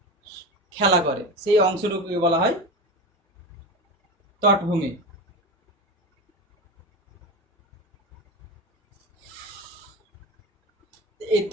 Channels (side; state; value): both; normal; correlation 0.24